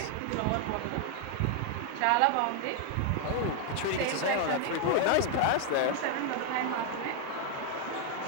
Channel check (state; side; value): different; both; correlation 0.00